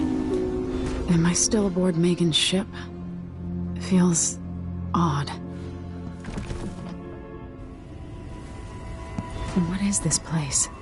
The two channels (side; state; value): both; identical; correlation 1.00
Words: Am I still aboard Megan's ship? Feels odd. What is this place?